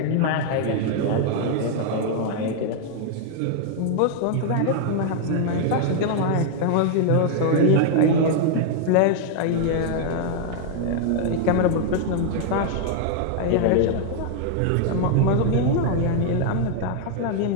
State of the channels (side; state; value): both; different; correlation 0.00